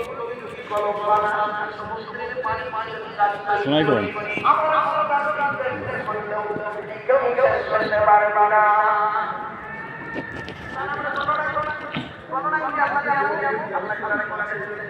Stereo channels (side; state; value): both; identical; correlation 1.00